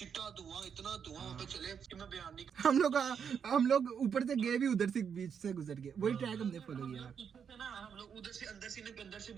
धुआं, इतना धुआं वहाँ पे चले कि मैं बयान नहीं। हम लोग ऊपर से गए भी, उधर से बीच से गुजर गए, वही ट्रैक हमने फॉलो किया ना, हम लोग उधर से अंदर से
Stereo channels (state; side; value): quieter; left; 7.2 dB